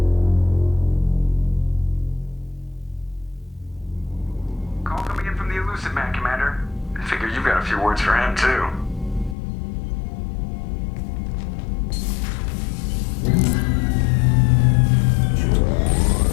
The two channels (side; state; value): right; drops out; at 9.3 s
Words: Call coming in from the Elusive Man, Commander. I figure you've got a few words for him, too.